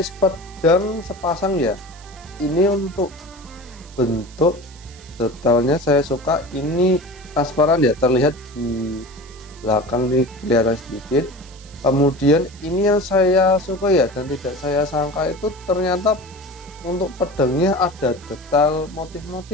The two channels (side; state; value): right; noise; hiss, 23 dB below the sound